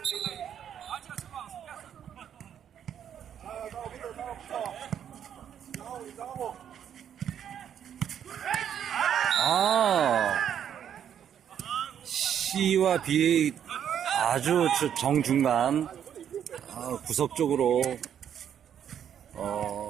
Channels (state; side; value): quieter; left; 9.2 dB